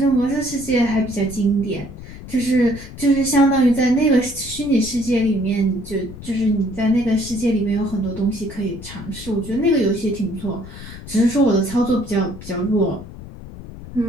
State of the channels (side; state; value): left; noise; rumble, 14 dB below the sound